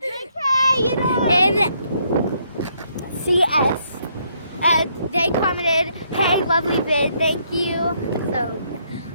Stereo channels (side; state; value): both; inverted; correlation -0.71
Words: JK, you know. And CS. And they commented, "Hey, lovely vid, thank you." So